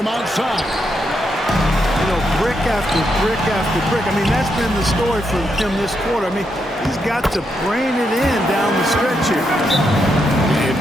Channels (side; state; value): both; normal; correlation 0.81